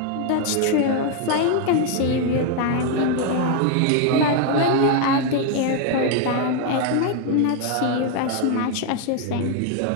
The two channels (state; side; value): different; both; correlation 0.01